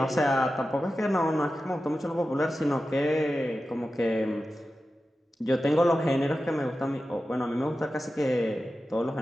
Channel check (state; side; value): normal; both; correlation 0.93